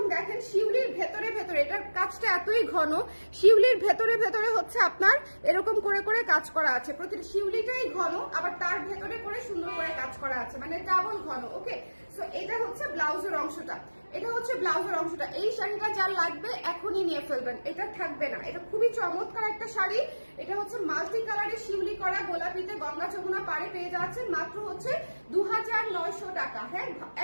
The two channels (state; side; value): inverted; both; correlation -1.00